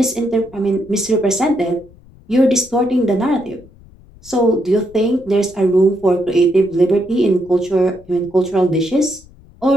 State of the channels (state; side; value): noise; left; rumble, 25 dB below the sound